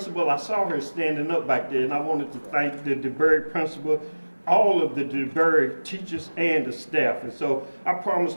I saw her standing up back there, and I wanted to thank the DeBerry principal, all of the DeBerry teachers and the staff. And so I promise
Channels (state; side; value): inverted; both; correlation -1.00